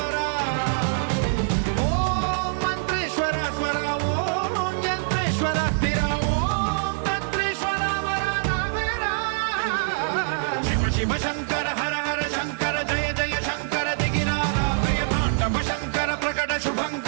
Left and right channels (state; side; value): silent; left; digital silence